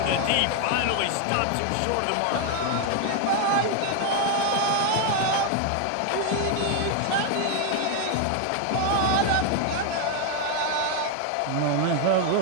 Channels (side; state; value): both; different; correlation 0.01